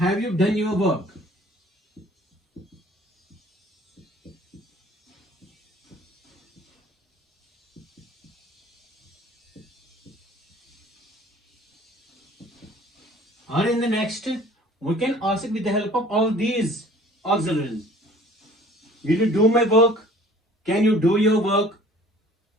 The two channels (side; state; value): both; normal; correlation 0.50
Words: you done your work? Or in the next, we can ask it with the help of all these auxiliaries. Will you do my work? Can you do your work?